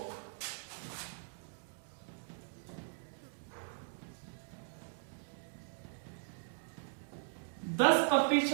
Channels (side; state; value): left; silent; digital silence